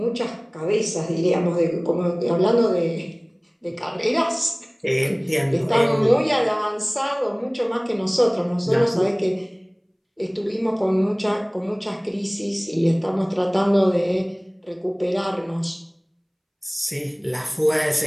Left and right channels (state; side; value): identical; both; correlation 1.00